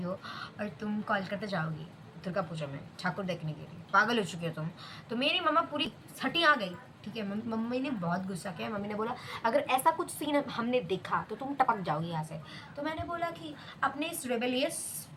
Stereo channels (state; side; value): identical; both; correlation 1.00